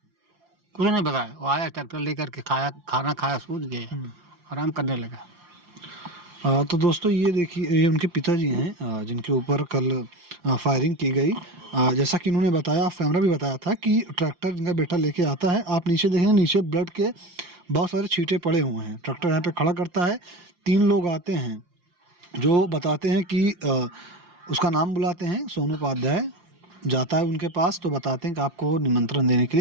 कुछ नहीं बताया। वो आया ट्रैक्टर लेकर के, खाया, खाना खाया, सूझ गया, आराम करने लगा। तो दोस्तों ये देखिए, ये उनके पिताजी हैं जिनके ऊपर कल फायरिंग की गई। जैसा कि इन्होंने बताया, ऑफ कैमरा भी बताया था कि ट्रैक्टर इनका बेटा लेके आता है। आप नीचे देखेंगे, नीचे ब्लड के बहुत सारे छींटे पड़े हुए हैं। ट्रैक्टर यहाँ पे खड़ा करता है, 3 लोग आते हैं जो बताते हैं कि उसका नाम बुलाते हैं, सोनू उपाध्याय जाता है उनके पास, तो बताते हैं कि आपको निमंत्रण देने के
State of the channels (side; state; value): left; late; 5.7 ms